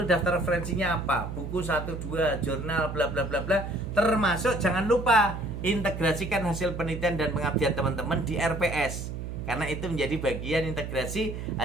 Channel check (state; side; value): noise; right; hum, 6 dB below the sound